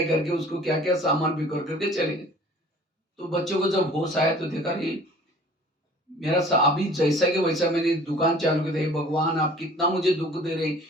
करके उसको क्या क्या सामान बिखर करके चले गए। तो बच्चों को जब होश आया तो देखा ये मेरा अभी जैसा कि वैसा मैंने दुकान चालू की थी, भगवान आप कितना मुझे दुख दे रहे,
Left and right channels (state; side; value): normal; both; correlation 0.49